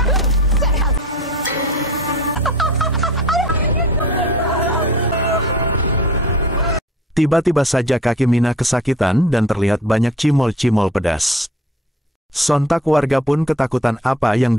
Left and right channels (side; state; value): both; normal; correlation 0.45